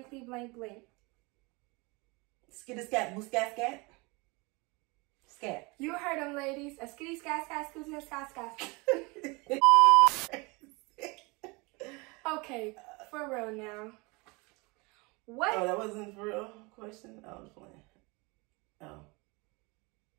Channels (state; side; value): quieter; left; 26.8 dB